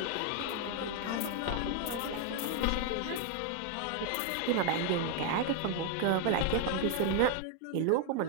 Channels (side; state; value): both; different; correlation 0.00